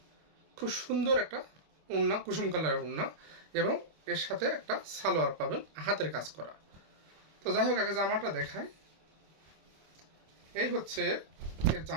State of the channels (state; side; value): late; left; 25 ms